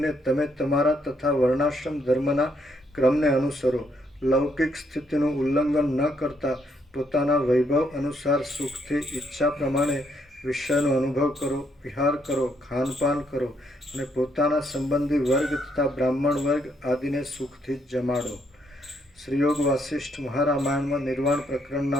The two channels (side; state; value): both; normal; correlation 0.73